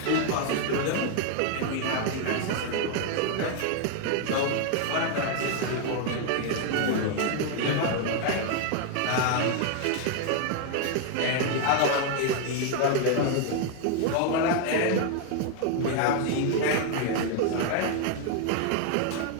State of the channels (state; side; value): different; both; correlation 0.00